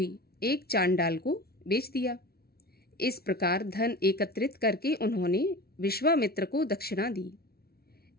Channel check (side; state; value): right; late; 0.45 ms